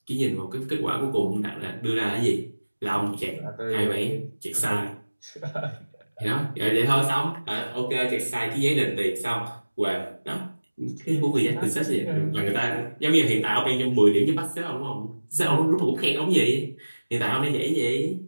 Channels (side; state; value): both; inverted; correlation -1.00